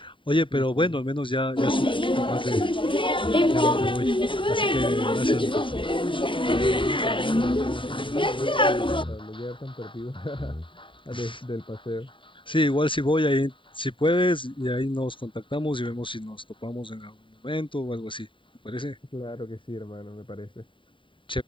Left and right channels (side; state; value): right; late; 0.25 ms